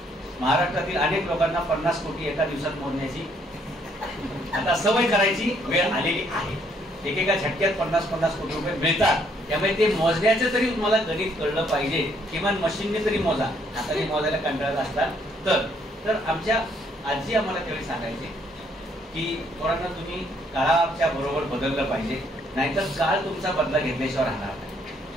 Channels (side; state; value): both; normal; correlation 0.68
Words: महाराष्ट्रातील अनेक लोकांना 50 कोटी एका दिवसात मोजण्याची आता सवय करायची वेळ आलेली आहे. एकेका झटक्यात 50-50 कोटी रुपये मिळतात. त्यामुळे ते मोजण्याचं तरी तुम्हाला गणित कळलं पाहिजे, किमान मशीनने तरी मोजा. हाताने मोजायला कंटाळत असतात तर आमच्या आजी आम्हाला त्यावेळी सांगायचे की पोरांना तुम्ही काळाच्या बरोबर बदललं पाहिजे, नाहीतर काळ तुमचा बदला घेतल्याशिवाय राहणार नाही.